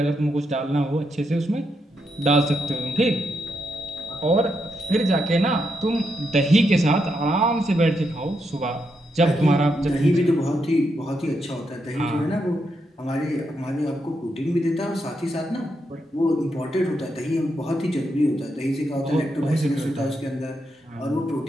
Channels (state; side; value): normal; both; correlation 0.81